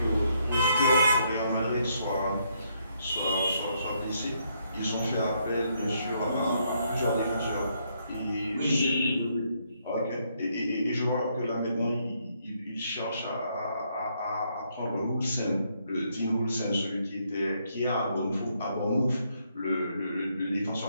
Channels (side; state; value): both; inverted; correlation -0.74